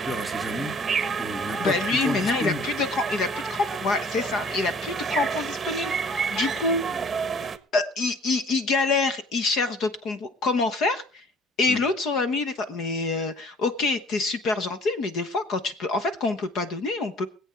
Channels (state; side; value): normal; both; correlation 0.52